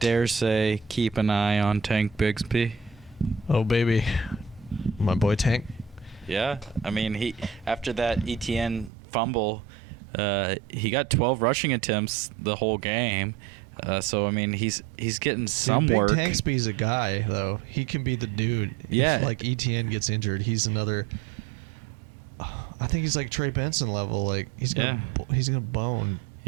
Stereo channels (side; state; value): left; drops out; at 8.9 s